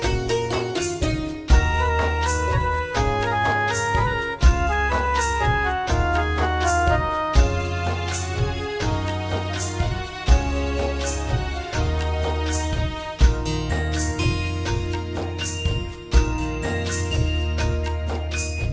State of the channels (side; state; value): both; identical; correlation 1.00